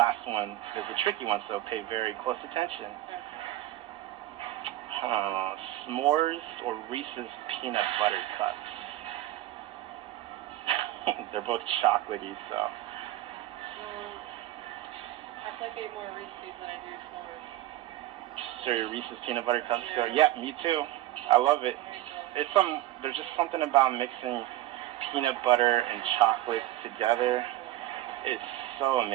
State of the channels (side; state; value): left; quieter; 15.1 dB